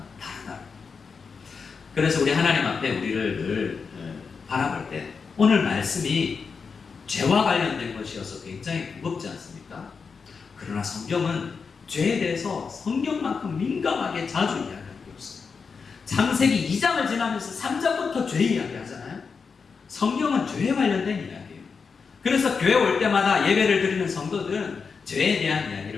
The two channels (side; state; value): right; quieter; 5.4 dB